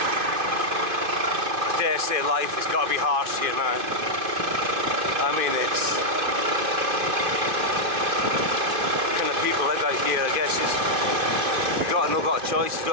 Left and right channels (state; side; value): late; left; 2.6 ms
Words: I dare say life has got to be harsh here, man. I mean, it's kind of people live out here. I guess you've got a choice. You